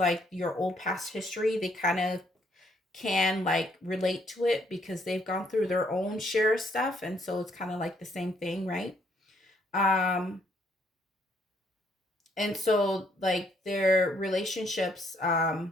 your old past history, they kind of can like relate to it because they've gone through their own share of stuff, and so it's kind of like the same thing, right? um and so like their relationships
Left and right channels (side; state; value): both; normal; correlation 0.69